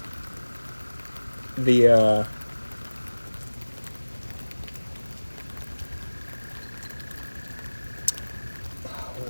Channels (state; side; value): inverted; both; correlation -1.00